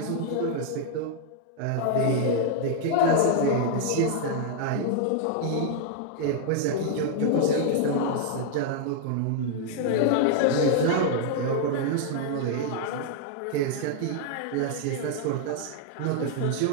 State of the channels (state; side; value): different; both; correlation -0.01